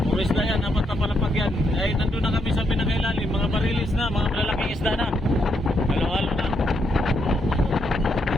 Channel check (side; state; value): both; normal; correlation 0.78